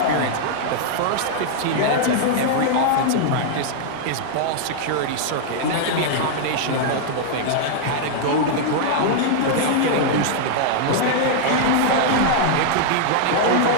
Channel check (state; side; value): different; both; correlation -0.01